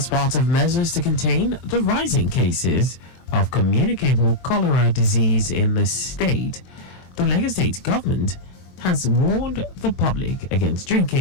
part of measures to contain the rising cases of communicable cholera disease in the state, the Lagos State government has warned the public against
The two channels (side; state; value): right; late; 32 ms